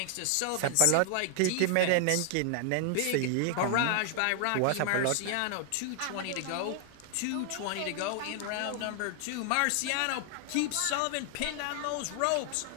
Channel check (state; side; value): different; both; correlation 0.00